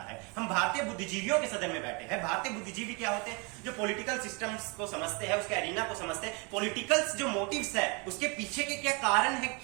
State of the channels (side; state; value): left; quieter; 30.9 dB